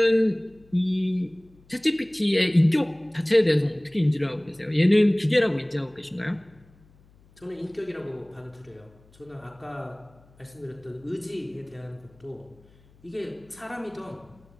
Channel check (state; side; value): noise; left; hum, 29 dB below the sound